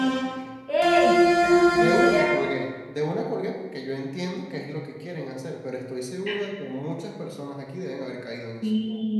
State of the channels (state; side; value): identical; both; correlation 1.00